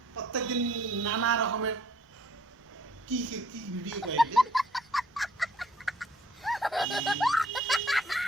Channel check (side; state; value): both; normal; correlation 0.61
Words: প্রত্যেকদিন নানা রকমের কি ভিডিও করে,